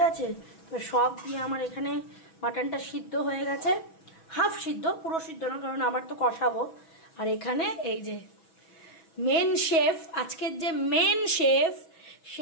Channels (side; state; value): right; late; 6.1 ms